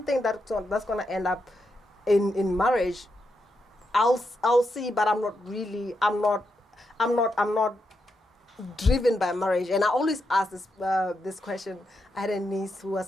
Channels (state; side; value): normal; both; correlation 0.84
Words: that's going to end up in marriage, I'll see, but I'm not driven by marriage. And I always ask this question. I had a niece who was